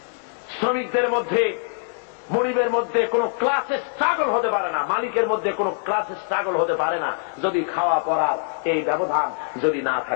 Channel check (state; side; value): silent; right; 63 dB below the other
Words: শ্রমিকদের মধ্যে, মনিবের মধ্যে কোন ক্লাসে স্ট্রাগল হতে পারে না, মালিকের মধ্যে কোন ক্লাসে স্ট্রাগল হতে পারে না, যদি খাওয়া পড়ার এই ব্যবধান যদি না